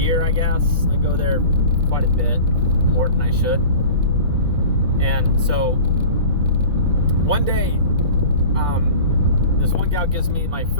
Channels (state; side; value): inverted; both; correlation -0.39